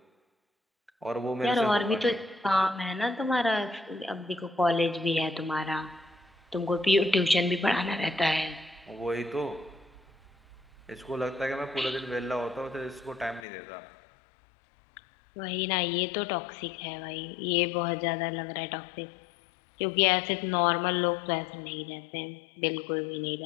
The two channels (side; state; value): right; drops out; at 13.5 s